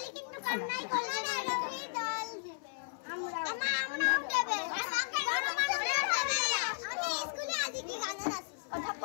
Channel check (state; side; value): silent; right; 55 dB below the other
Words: কিন্তু কান্নাই করবে না রবি ডল দিবে আমরাও দেবে বড় মানুষ দেবে আমি স্কুলে আজ কি গানা নাচি কথা